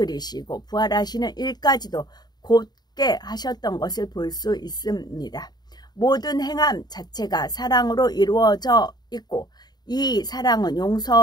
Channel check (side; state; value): right; late; 0.20 ms